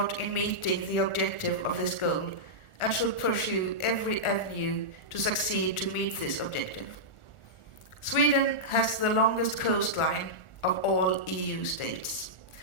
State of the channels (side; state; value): right; late; 1.4 ms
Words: in meeting the objective of this goal, and should pursue every avenue to succeed to meet this objective. Sweden has the longest coastline of all EU states.